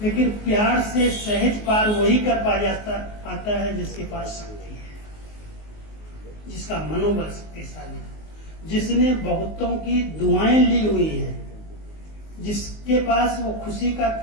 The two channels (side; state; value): right; late; 19 ms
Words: लेकिन प्यार से सहज पार वही कर पाता है जिसके पास शक्ति है, जिसका मनोबल शक्तिशाली है, जिसने बहुतों की दुआएं ली हुई है, जिसके पास वो खुशी का